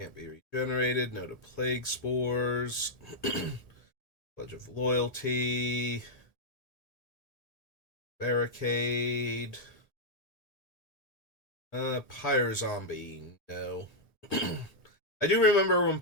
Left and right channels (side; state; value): right; late; 1.8 ms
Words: be regenerated. No to Plague Spores. Pledge of Loyalty. Barricade. Pyre Zombie. No. I do remember when